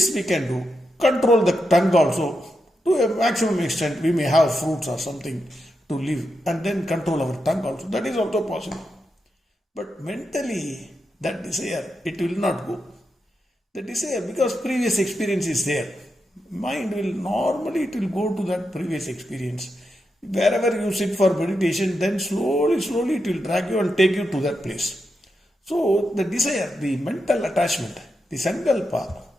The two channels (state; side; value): normal; both; correlation 0.86